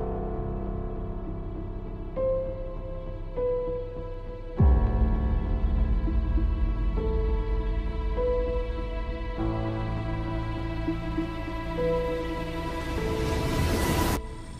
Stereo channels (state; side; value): identical; both; correlation 1.00